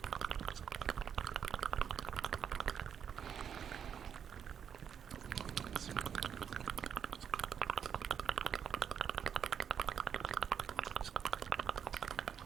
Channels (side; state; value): left; quieter; 8.1 dB